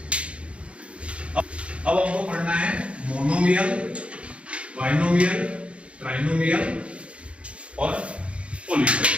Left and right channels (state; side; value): late; left; 0.060 ms